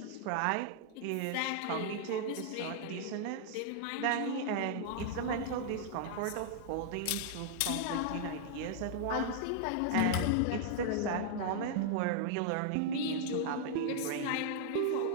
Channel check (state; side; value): different; both; correlation -0.01